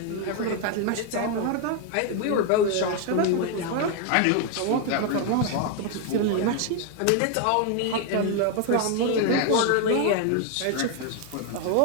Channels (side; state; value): both; different; correlation 0.01